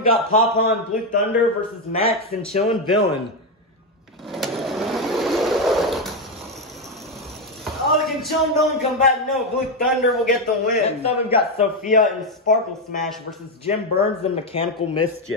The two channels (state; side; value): normal; both; correlation 0.07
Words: got Pawpaw and Blue Thunder versus Max and Chillin' Villain. Oh, can Chillin' Villain come back? No, Blue Thunder will get the win. Next up, we've got Sophia and Sparkle Smash versus Jim Burns and Mechanical